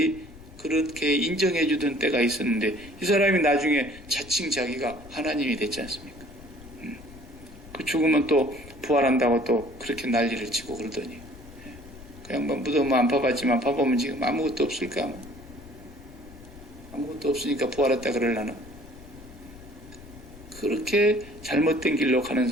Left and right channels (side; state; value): left; noise; rumble, 19 dB below the sound